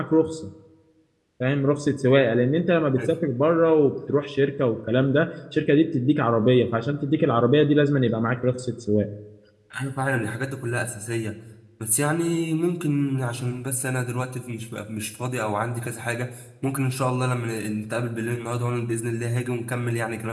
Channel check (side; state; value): both; identical; correlation 1.00